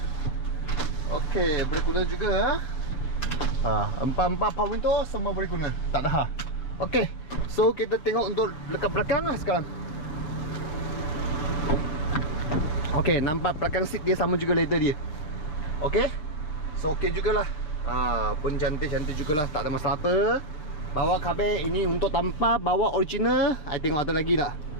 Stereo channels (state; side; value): late; right; 6.6 ms